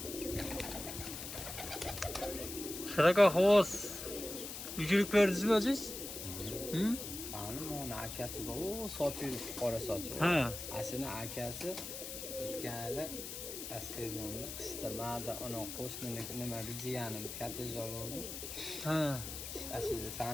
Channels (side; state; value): left; noise; hiss, 8 dB below the sound